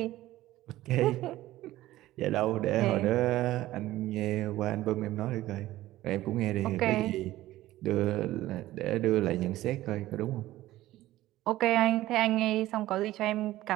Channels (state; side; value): quieter; left; 15.8 dB